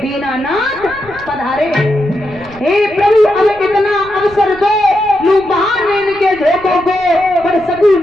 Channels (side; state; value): right; noise; rumble, 21 dB below the sound